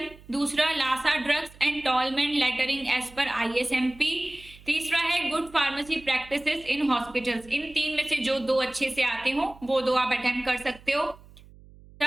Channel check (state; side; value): noise; right; hum, 22 dB below the sound